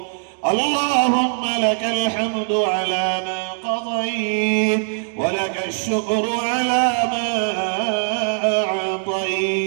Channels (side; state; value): left; silent; 65 dB below the other